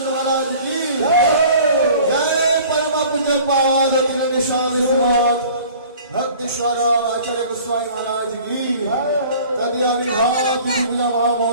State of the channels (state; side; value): inverted; both; correlation -0.47